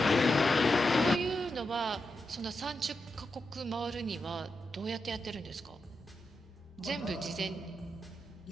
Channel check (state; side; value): normal; both; correlation 0.87